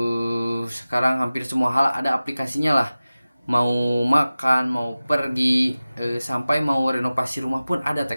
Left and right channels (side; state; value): both; inverted; correlation -0.97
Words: hampir semua hal ada aplikasinya lah. Mau makan, mau pergi, sampai mau renovasi rumah pun ada